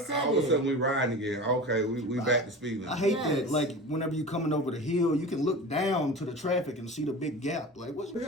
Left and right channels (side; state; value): both; normal; correlation 0.33